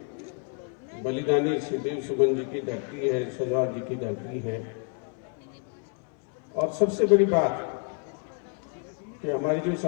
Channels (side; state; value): right; quieter; 39.3 dB